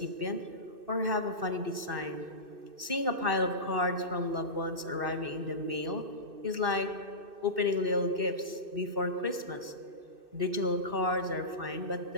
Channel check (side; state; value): left; late; 2.6 ms